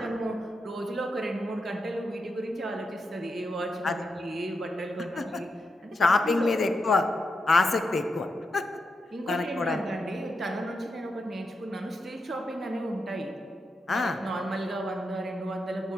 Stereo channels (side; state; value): both; normal; correlation 0.86